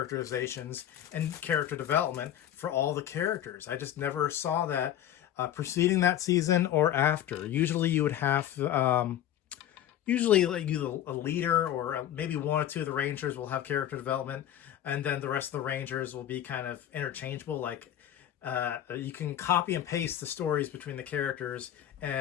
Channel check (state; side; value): quieter; right; 11.4 dB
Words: and character development for all the characters. I just never saw that preceding that season or after. Usually you would have usually like a leader or maybe one or two of the Rangers will have character development, and then the rest of the Rangers will be kind of interchangeable. Like you can copy and paste the stories between the characters